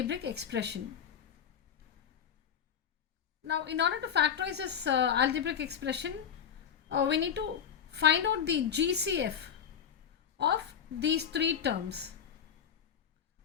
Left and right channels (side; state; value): right; quieter; 8.2 dB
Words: expression. Now in order to factorize this algebraic expression, we need to find out the GCF of these three terms.